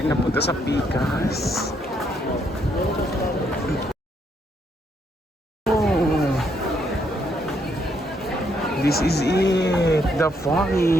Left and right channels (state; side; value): normal; both; correlation 0.73